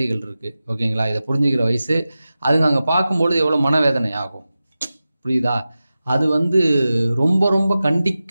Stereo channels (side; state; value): both; inverted; correlation -0.95